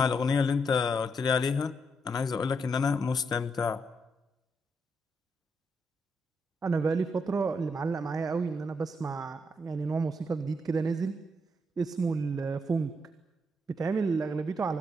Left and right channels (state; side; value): normal; both; correlation 0.79